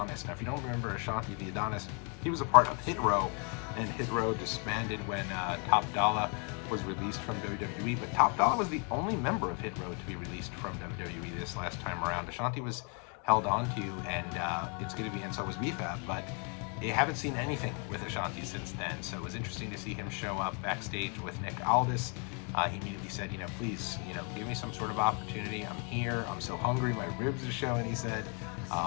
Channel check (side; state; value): right; quieter; 37.0 dB